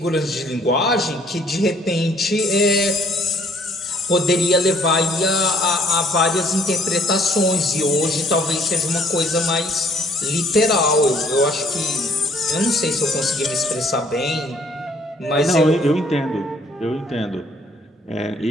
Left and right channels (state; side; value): normal; both; correlation 0.61